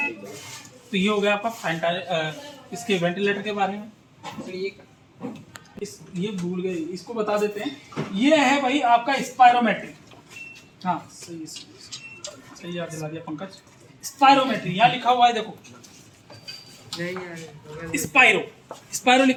तो ये हो गया आपका इसके वेंटिलेटर के बारे में। ये भूल गए, इसको बता देते हैं। ये है भाई आपका स्पायरोमेट्री, हाँ सही याद दिला दिया पंकज। स्पायरोमेट्री यहाँ लिखा हुआ है, देखो स्पायरो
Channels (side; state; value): both; identical; correlation 1.00